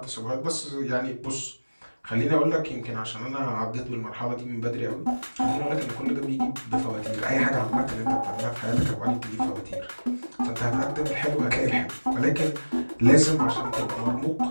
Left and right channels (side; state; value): both; inverted; correlation -1.00